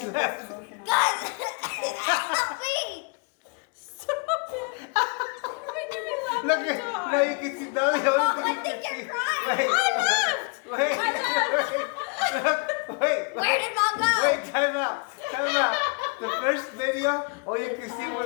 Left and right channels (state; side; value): quieter; right; 33.4 dB